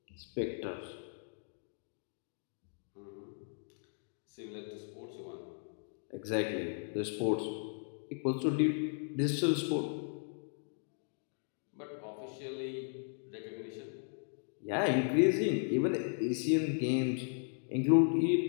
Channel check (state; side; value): silent; right; 54 dB below the other